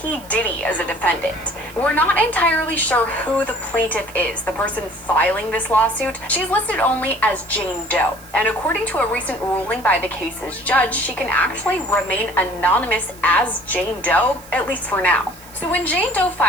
Diddy as a defendant. We're not entirely sure who the plaintiff is, the person filing this lawsuit. She's listed only as Jane Doe, and according to a recent ruling by the case's judge, she can actually remain anonymous as Jane Doe, at least for now. So when Jane Doe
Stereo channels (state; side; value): noise; right; hiss, 21 dB below the sound